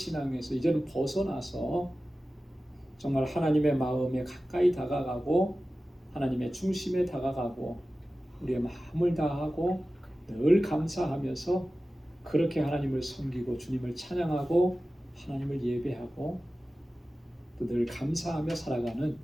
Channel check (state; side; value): normal; both; correlation 0.95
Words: 이제는 벗어나서 정말 하나님의 마음에 가까이 다가가고 하나님의 중심에 다가가고 우리의 마음을 다하고 늘 감사하면서 그렇게 하나님을 섬기고 주님을 찬양하고 하나님을 예배하고 또 늘 감사하며 살아가는